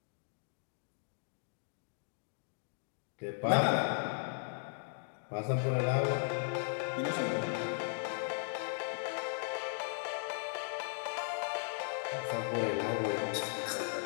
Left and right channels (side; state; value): right; silent; digital silence